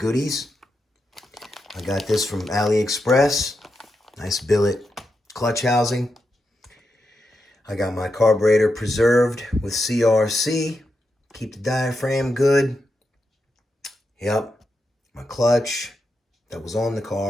I got this from AliExpress. Nice billet clutch housing. I got my carburetor preserved with CRC. Keep the diaphragm good. Yep. My clutch that was on the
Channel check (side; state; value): both; normal; correlation 0.86